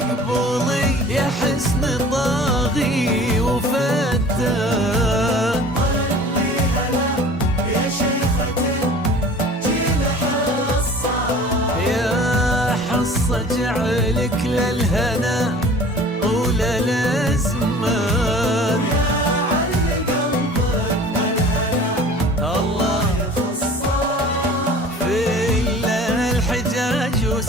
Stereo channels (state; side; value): normal; both; correlation 0.45